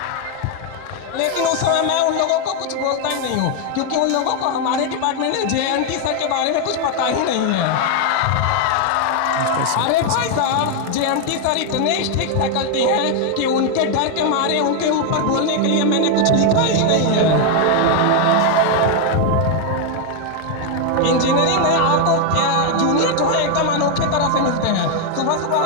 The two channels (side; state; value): both; different; correlation 0.01